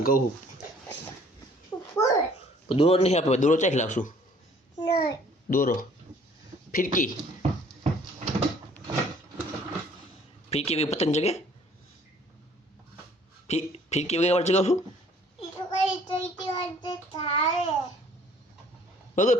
કહું દોરો નહીં આપણે, દોરો ચાખી લાવશું. દોરો ફિરકી ફિરકી વગર પતંગ જગે. ફિરકી વગર ચગાવશું વગર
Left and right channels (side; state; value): both; normal; correlation 0.57